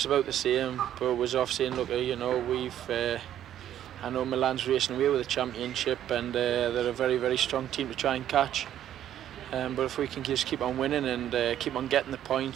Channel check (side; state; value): left; quieter; 11.3 dB